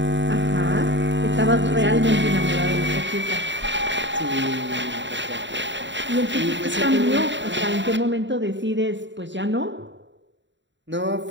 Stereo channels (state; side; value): late; left; 0.53 ms